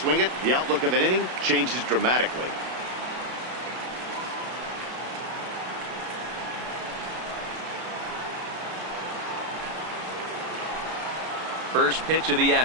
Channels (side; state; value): left; late; 32 ms